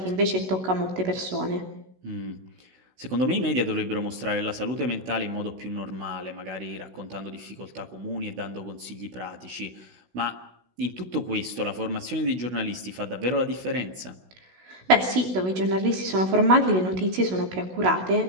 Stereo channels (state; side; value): late; left; 16 ms